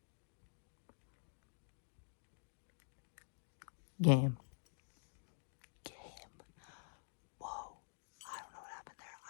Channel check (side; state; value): right; silent; digital silence